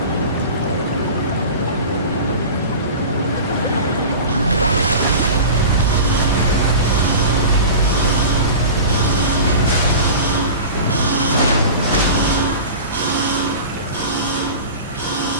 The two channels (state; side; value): inverted; both; correlation -0.34